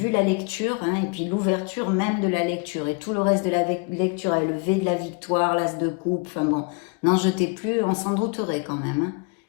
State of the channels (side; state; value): right; quieter; 31.8 dB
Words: la lecture, hein, et puis l'ouverture même de la lecture, et tout le reste de la lecture, le V de la victoire, l'As de coupe, enfin bon, n'en jetez plus, on s'en douterait quand même, hein,